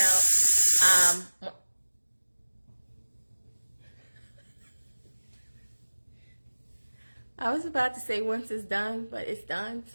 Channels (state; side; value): inverted; both; correlation -1.00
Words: I was about to say once it's done, but it's done,